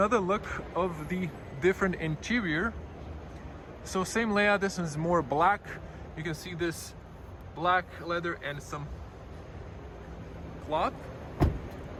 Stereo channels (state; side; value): identical; both; correlation 1.00